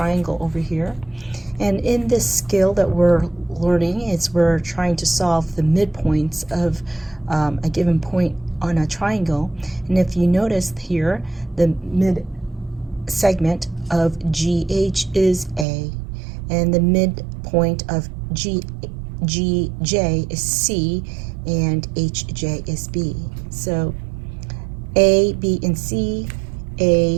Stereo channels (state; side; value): drops out; left; at 15.7 s